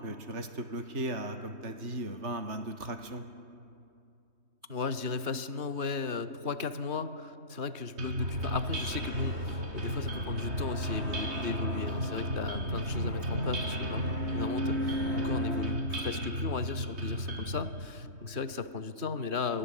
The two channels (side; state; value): left; late; 3.2 ms